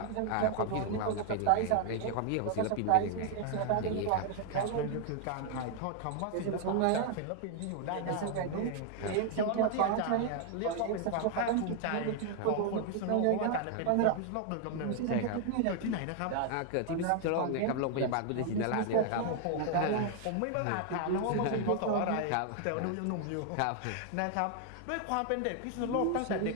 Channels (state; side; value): different; both; correlation 0.00